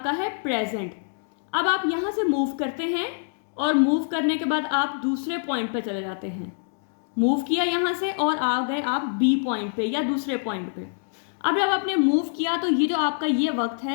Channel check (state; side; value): silent; right; digital silence